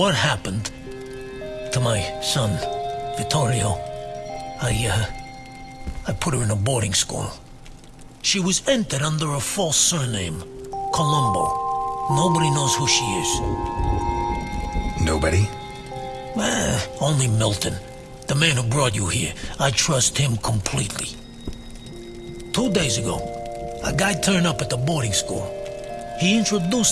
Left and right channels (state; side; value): identical; both; correlation 1.00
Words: happened to my son, Vittorio, I put her in a boarding school. She was entered under a false surname, Colombo. Nobody knows who she is. Nobody? Only Milton, the man who brought you here. I trust him completely. 2 days ago, a guy turned up at the boarding school. He